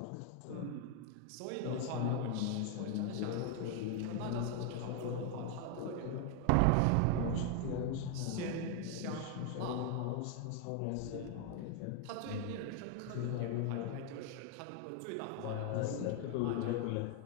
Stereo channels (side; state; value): both; different; correlation 0.00